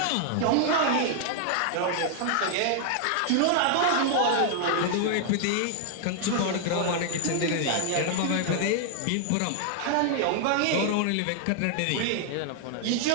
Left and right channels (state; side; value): different; both; correlation 0.00